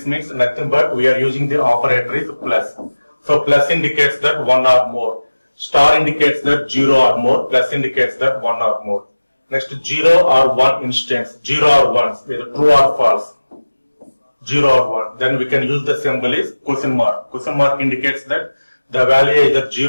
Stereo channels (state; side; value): inverted; both; correlation -1.00